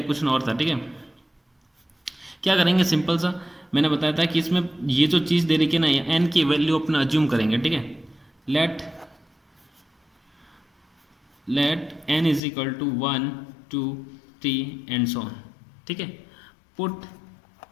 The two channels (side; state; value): right; drops out; at 12.4 s